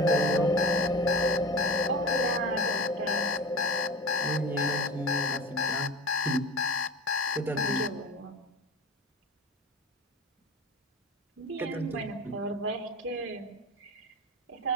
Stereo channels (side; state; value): both; normal; correlation 0.32